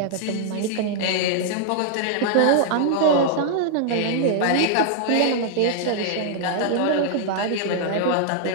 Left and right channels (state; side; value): different; both; correlation -0.01